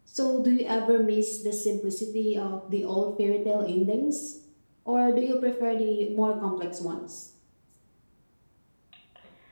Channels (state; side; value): inverted; both; correlation -1.00